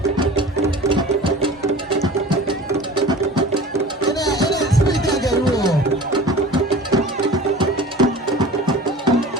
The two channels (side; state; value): both; normal; correlation 0.40